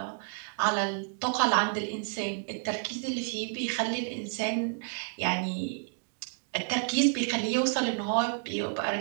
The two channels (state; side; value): silent; left; 56 dB below the other